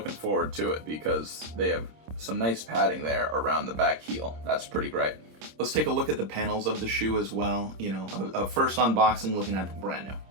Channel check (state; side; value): late; left; 26 ms